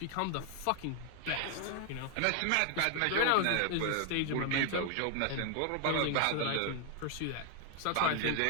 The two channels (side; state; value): both; different; correlation 0.00